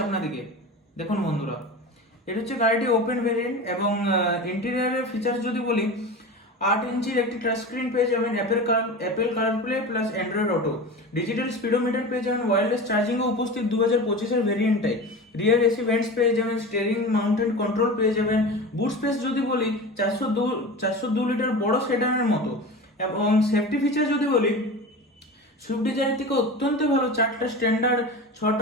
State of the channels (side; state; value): both; normal; correlation 0.30